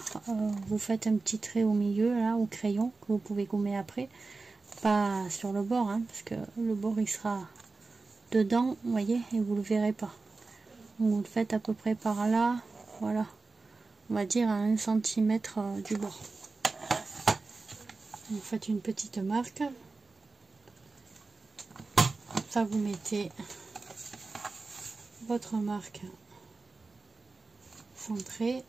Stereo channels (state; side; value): quieter; left; 3.8 dB